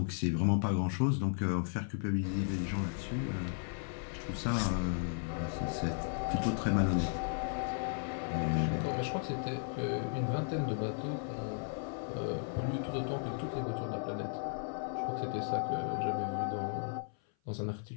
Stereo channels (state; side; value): silent; right; 54 dB below the other